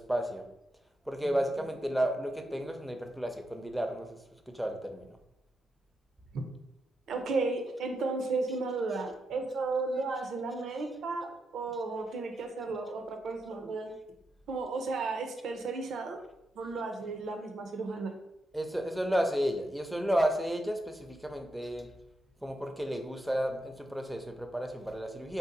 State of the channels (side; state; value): both; normal; correlation 0.84